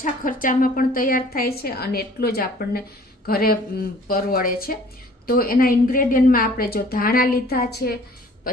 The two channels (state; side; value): normal; both; correlation 0.52